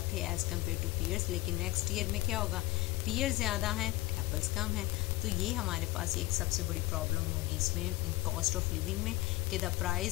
थे एज़ कम्पेयर टू पियर्स, लेकिन नेक्स्ट ईयर में क्या होगा? पियर ज़्यादा हैं, एप्पल्स कम हैं। तो ये हमारे पास एक सबसे बड़ी प्रॉब्लम होगी इसमें कॉस्ट ऑफ लिविंग में कि the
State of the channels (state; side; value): quieter; right; 18.9 dB